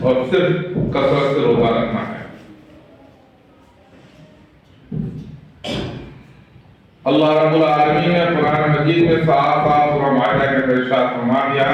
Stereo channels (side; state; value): both; identical; correlation 1.00